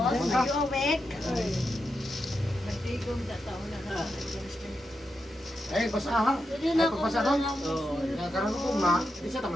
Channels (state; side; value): normal; both; correlation 0.86